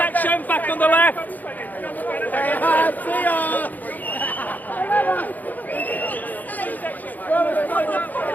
back on the left. See ya!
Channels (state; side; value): late; right; 0.082 ms